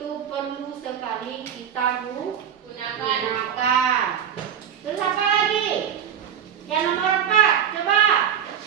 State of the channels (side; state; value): left; quieter; 8.9 dB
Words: perlu sekali kita gunakan. Terus apa lagi? Yang nomor 4, coba.